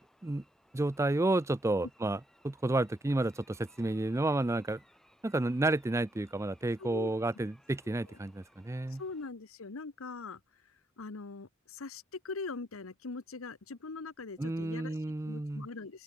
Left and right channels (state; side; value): normal; both; correlation 0.78